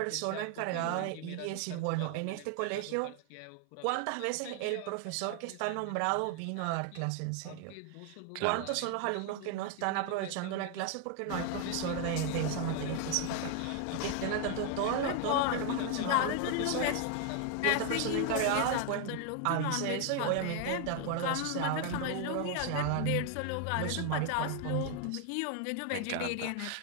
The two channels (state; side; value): different; both; correlation 0.00